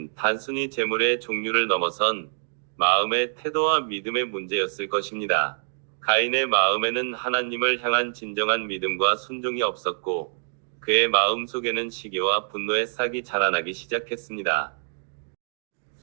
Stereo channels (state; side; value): silent; left; digital silence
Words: 단순히 제물의 종류를 넘어선 마음의 태도와 믿음의 문제였을 것입니다. 가인의 마음에는 하나님을 향한 진정한 믿음과 순종이 없었고 그의 마음 속에는 시기와 분노의 싹이 자라나기 시작했습니다.